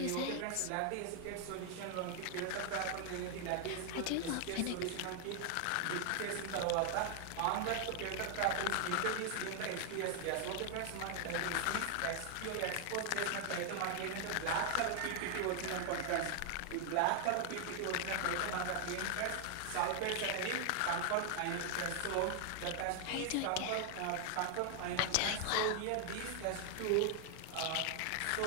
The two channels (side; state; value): both; different; correlation 0.00